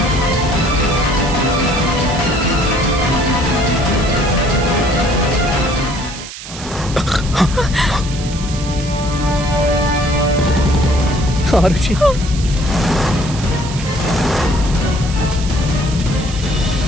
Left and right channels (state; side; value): noise; right; hiss, 12 dB below the sound